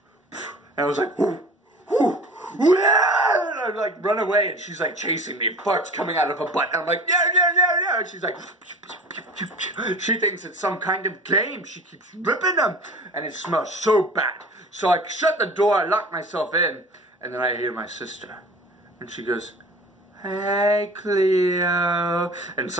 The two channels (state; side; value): normal; both; correlation 0.41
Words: and I was like, whoo, whoo, whoo, and I like run away, and she's like chasing me, farts coming out of her butt, and I'm like, yeah, yeah, yeah, yeah, and she's like, she thinks it's some kind of game, she keeps ripping them, and it smells so bad. So I shut the door, I lock myself in, and then I hear my sister. And she goes, hey, Cleo. And it's